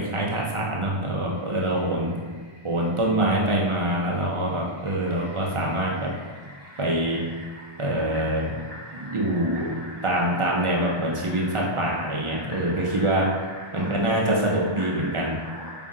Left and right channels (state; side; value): late; left; 1.4 ms